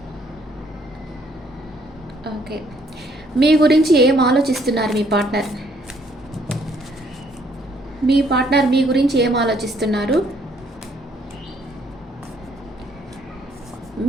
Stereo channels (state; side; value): normal; both; correlation 0.66